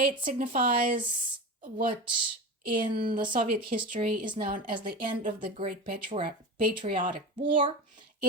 signifies what in the Soviet history is known as the end of the Great Patriotic War.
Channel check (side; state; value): both; normal; correlation 0.26